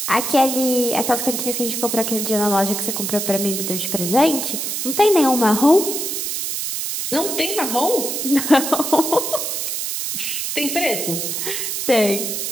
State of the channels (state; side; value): noise; right; hiss, 3 dB below the sound